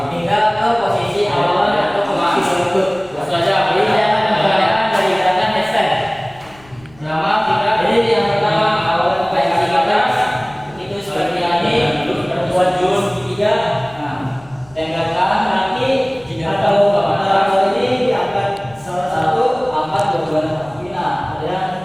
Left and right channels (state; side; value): noise; left; rumble, 26 dB below the sound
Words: hingga ke posisi awal atau posisi lutut. Saja. Jadi saya akan mengerjakan dari gerakan handstand. Jadi yang pertama awal posisi atas itu seperti ini, buat jurus tiga, tengahkan kaki atau ini diangkat salah satu, angkat dua kaki. Nah, ada yang